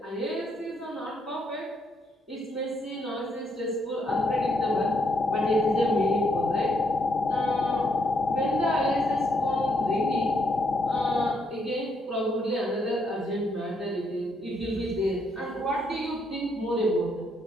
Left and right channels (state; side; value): normal; both; correlation 0.74